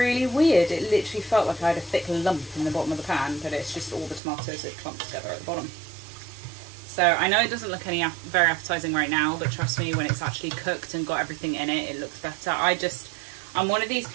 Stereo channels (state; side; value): drops out; left; at 4.2 s